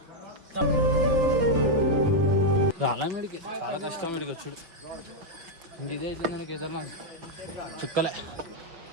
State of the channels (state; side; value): late; left; 6.1 ms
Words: రాలా మీడికి, చాలా కష్టం మీడికి వచ్చాడు. ఇంక ఇదే అవుతుంది నాకు ఏదన్నా చుక్కలే